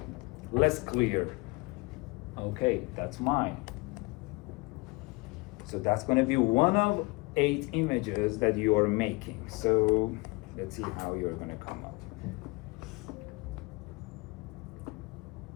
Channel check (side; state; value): right; quieter; 25.9 dB